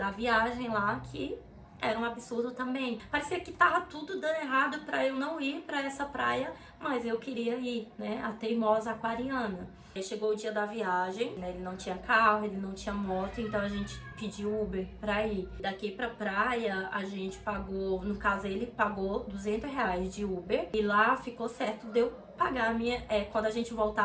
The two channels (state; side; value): identical; both; correlation 1.00